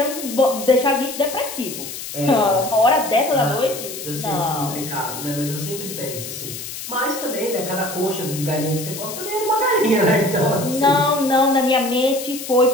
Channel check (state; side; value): noise; left; hiss, 9 dB below the sound